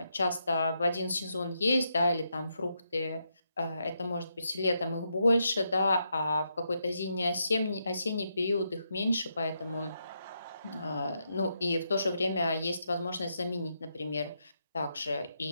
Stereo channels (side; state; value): both; inverted; correlation -0.81